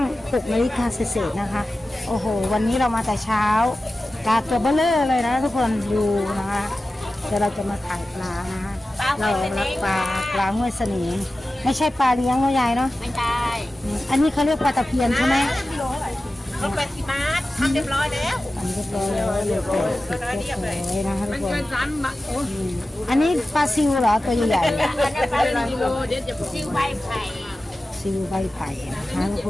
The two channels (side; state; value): both; normal; correlation 0.95